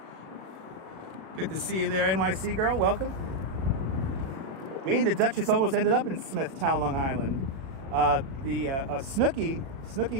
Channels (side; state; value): left; late; 37 ms